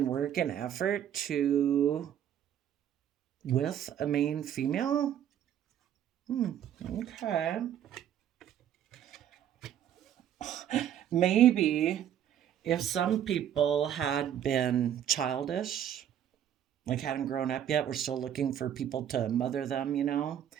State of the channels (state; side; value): quieter; left; 10.1 dB